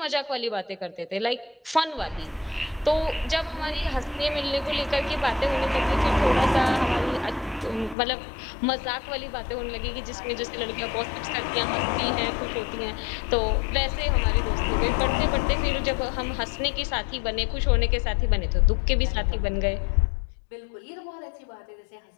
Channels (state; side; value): drops out; right; at 8.0 s